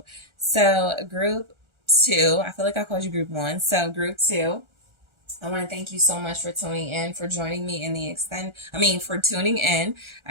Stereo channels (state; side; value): late; left; 1.4 ms